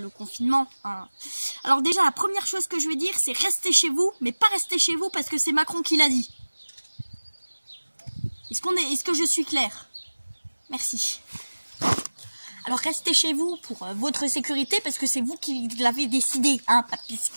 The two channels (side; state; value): both; inverted; correlation -1.00